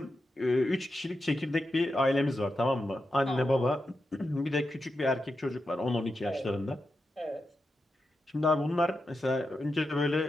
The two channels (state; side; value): normal; both; correlation 0.88